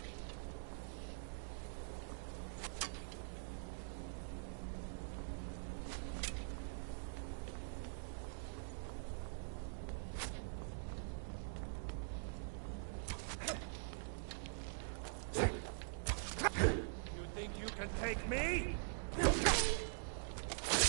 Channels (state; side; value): silent; left; digital silence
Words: You think you can take me?